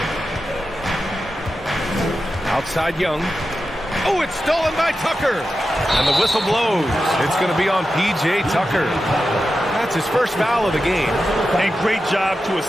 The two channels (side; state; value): both; normal; correlation 0.91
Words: Outside Young. Oh, it's stolen by Tucker. And the whistle blows. It's going to be on P.J. Tucker. That's his first foul of the game. And great job to